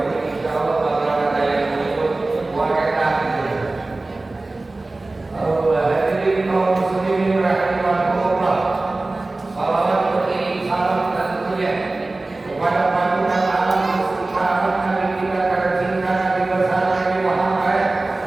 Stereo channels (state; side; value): quieter; left; 3.1 dB